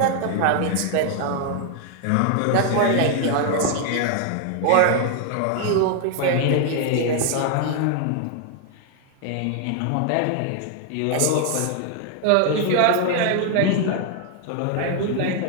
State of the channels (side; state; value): both; different; correlation 0.00